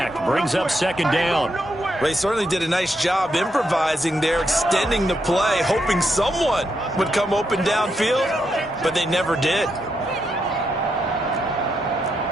Brings up 2nd down. They certainly did a nice job improvising there, extending the play, hoping someone would come open downfield, but they never did.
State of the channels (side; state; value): both; normal; correlation 0.81